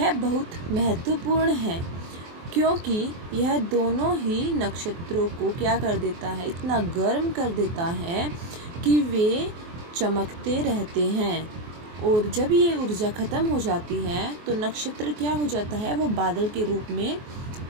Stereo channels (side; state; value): left; late; 24 ms